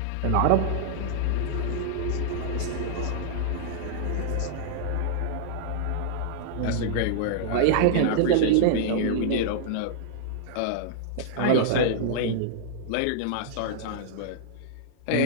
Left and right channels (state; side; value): different; both; correlation -0.01